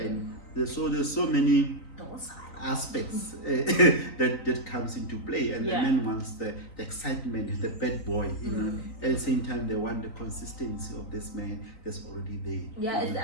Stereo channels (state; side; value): late; right; 3.9 ms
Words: there's so many aspects that comes into play, and the man wants the excitement, the bad boy, you know. At the same time, they want the consistency of this man that's already there.